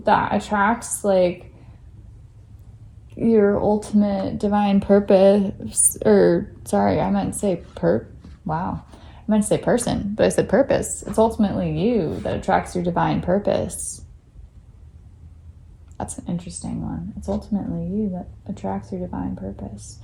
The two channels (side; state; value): both; identical; correlation 1.00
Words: that attracts like your ultimate divine purpose, or sorry, I meant to say wow. I meant to say person, but I said purpose. It's ultimately you that attracts your divine purpose. That's an interesting one. It's ultimately you that attracts your divine purpose.